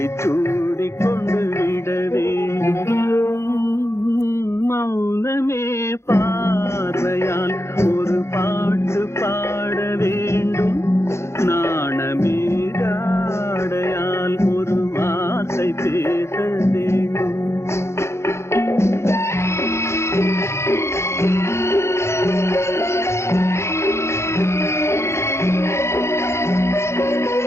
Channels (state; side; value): late; right; 0.13 ms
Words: சூடி கொண்டு விட வேண்டும். மௌனமே பார்வையால் ஒரு பாட்டு பாட வேண்டும். நாணமே ஜாடையால் ஒரு வார்த்தை பேச வேண்டும்.